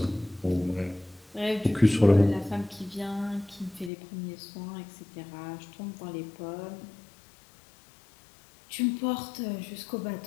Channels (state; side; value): drops out; right; at 3.9 s